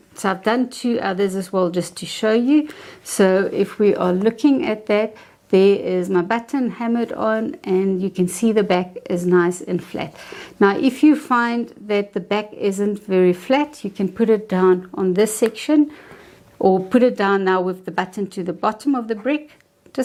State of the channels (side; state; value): both; identical; correlation 1.00